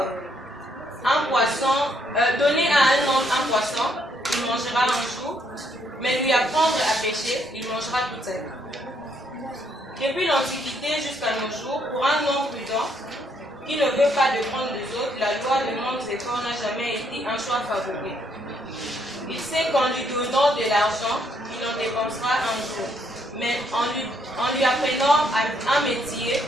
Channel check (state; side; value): normal; both; correlation 0.71